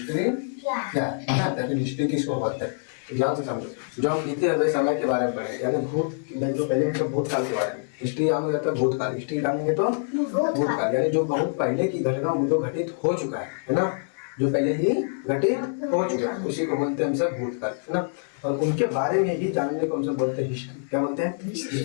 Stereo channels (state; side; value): silent; right; digital silence